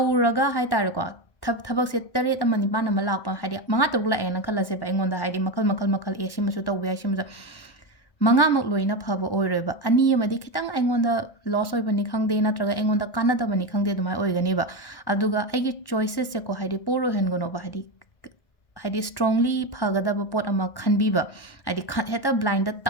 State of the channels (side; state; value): right; late; 1.1 ms